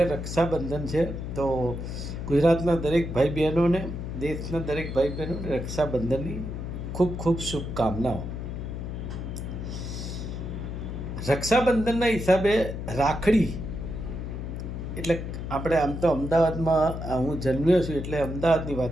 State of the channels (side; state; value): left; noise; hum, 6 dB below the sound